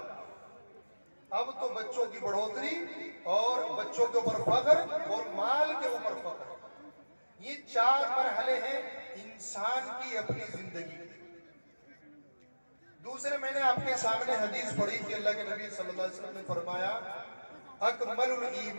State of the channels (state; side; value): inverted; both; correlation -1.00